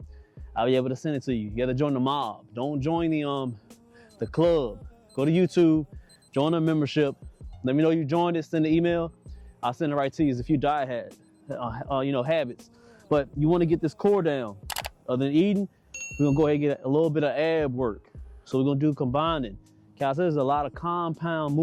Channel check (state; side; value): identical; both; correlation 1.00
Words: I'll be able to send it to you. You got to join the mob. Don't join the club. Go to YouTube, join the membership. Let me know you joined it. Send the email. I'll send it right to you. There's a few diet habits. But you want to get this core down. Other than eating, we're gonna go ahead and get a little bit of ab work. So we're gonna do combining. Calisthenics is a lot of compound